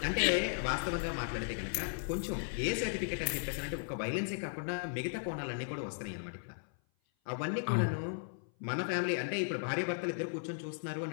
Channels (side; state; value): right; silent; 54 dB below the other